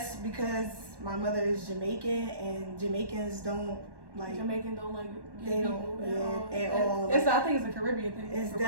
because my mother is Jamaican and Jamaicans don't like. Jamaican don't like They don't at all. I think it's a Caribbean thing. It's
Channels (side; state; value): left; late; 1.1 ms